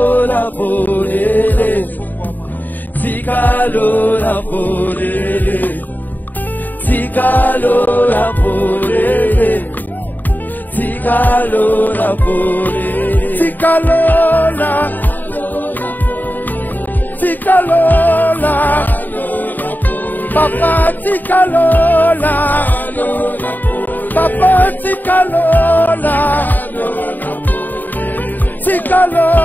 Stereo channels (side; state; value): right; late; 0.087 ms